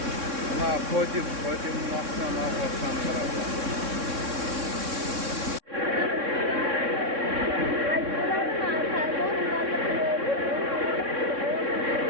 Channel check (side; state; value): left; late; 3.6 ms